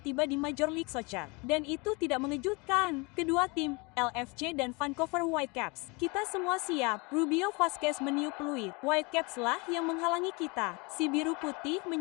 di Major League Soccer. Dan itu tidak mengejutkan. Kedua tim, LFC dan Vancouver Whitecaps, kita semua siap. Rubio Vasquez meniup peluit. Whitecaps lah yang menghalangi kita. Si biru putih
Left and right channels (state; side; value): quieter; right; 28.4 dB